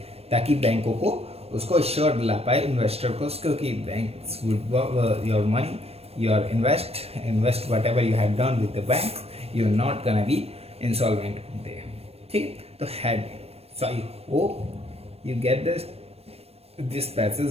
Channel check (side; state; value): left; late; 0.29 ms